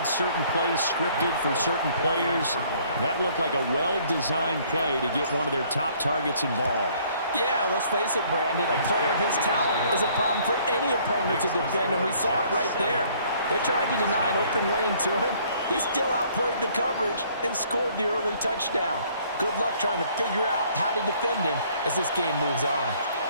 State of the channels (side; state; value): both; inverted; correlation -0.60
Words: certain plays scripted for certain players. That looked like a well-designed play to get one of their top targets involved. Yeah, let's face it, Brandon. A player of his talent is a problem for any opponent to defend, and we saw it right there. They tried to deny an open lane to him. He still outplayed the coverage and scored the early touchdown. Good luck trying to figure out how to defend him as this game moves on.